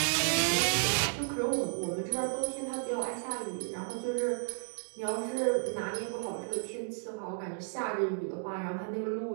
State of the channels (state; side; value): silent; left; digital silence